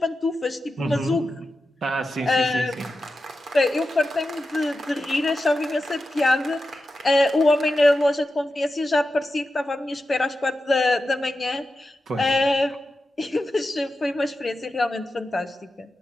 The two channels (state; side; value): normal; both; correlation 0.91